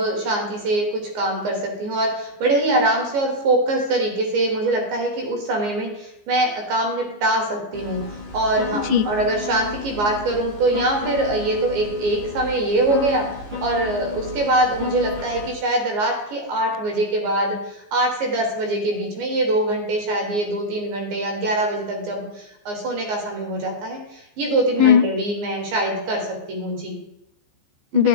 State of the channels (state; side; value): late; left; 14 ms